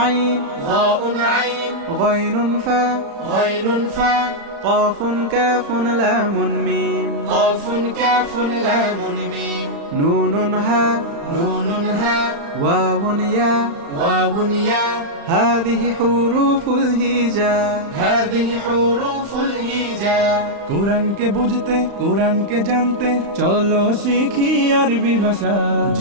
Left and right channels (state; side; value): late; left; 35 ms